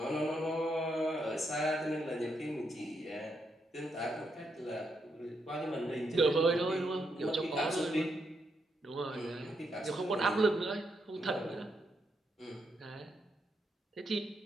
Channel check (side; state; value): both; normal; correlation 0.80